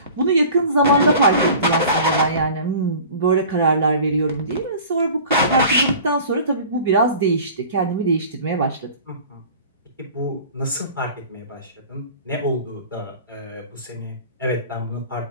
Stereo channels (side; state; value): both; inverted; correlation -0.42